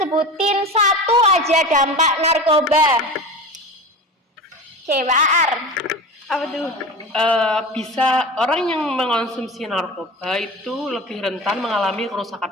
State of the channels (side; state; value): both; normal; correlation 0.30